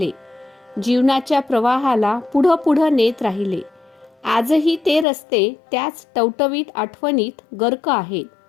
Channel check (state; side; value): drops out; right; at 5.1 s